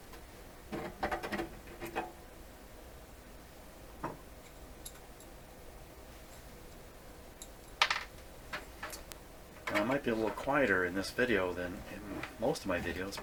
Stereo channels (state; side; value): identical; both; correlation 1.00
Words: Now, it might be a little quieter in this video than in most of my videos